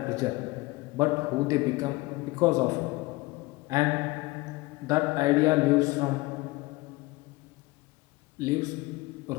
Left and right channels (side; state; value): right; quieter; 21.6 dB